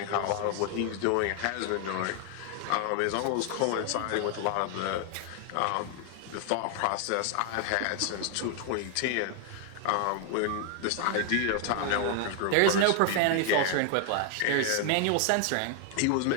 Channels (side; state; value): both; different; correlation 0.00